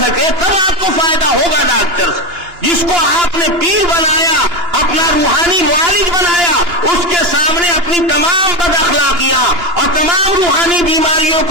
تب آپ کو فائدہ ہوگا ڈاکٹر سے۔ جس کو آپ نے پیر بنایا، اپنا روحانی معالج بنایا، اس کے سامنے اپنی تمام بد اخلاقیاں اور تمام روحانی بیماریوں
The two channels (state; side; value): late; left; 2.9 ms